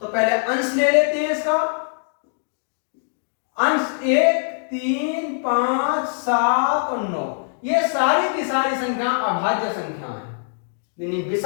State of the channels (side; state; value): right; silent; digital silence